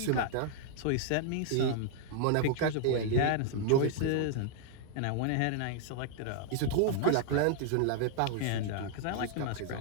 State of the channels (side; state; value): both; different; correlation -0.01